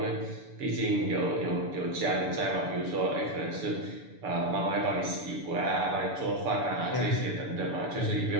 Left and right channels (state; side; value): late; left; 6.9 ms